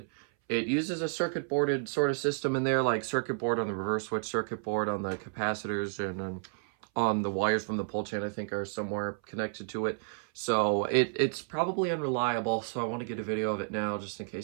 It uses a circuit boarded sort of system in there, like circuit board on the reverse switch, circuit board on the capacitors, and on the wires from the pull chain, I think, are somewhere connected to it. So it's probably unreliable, so I want to get a video of it now just in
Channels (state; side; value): silent; left; 57 dB below the other